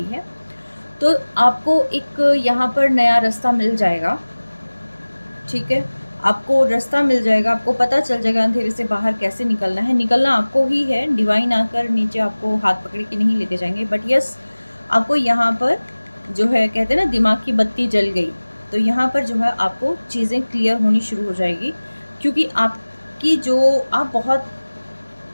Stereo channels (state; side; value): inverted; both; correlation -1.00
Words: है, तो आपको एक यहाँ पर नया रास्ता मिल जाएगा, ठीक है। आपको रास्ता मिल जाएगा, आपको पता चल जाएगा अंधेरे से बाहर कैसे निकलना है। निकलना आपको ही है, डिवाइन आकर नीचे आपको हाथ पकड़ के नहीं लेके जाएंगे, बट यस, आपको यहाँ पर जो है कहते हैं ना, दिमाग की बत्ती जल गई, तो यहाँ पर जो है आपको चीज़ें क्लियर होनी शुरू हो जाएगी, क्योंकि आपकी जो आप बहुत